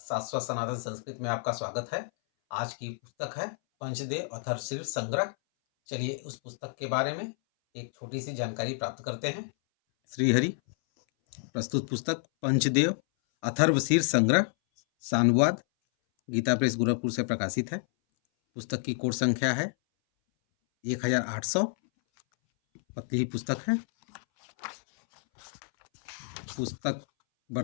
सनातन संस्कृत में आपका स्वागत है। आज की पुस्तक है पंचदेव अथर्वशीर संग्रह। चलिए उस पुस्तक के बारे में एक छोटी सी जानकारी प्राप्त करते हैं। श्रीहरि प्रस्तुत पुस्तक पंचदेव अथर्वशीर संग्रह सानुवाद गीता प्रेस गोरखपुर से प्रकाशित है। पुस्तक की कोड संख्या है 1800। पतली ही पुस्तक है। पुस्तक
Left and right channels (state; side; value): silent; right; 58 dB below the other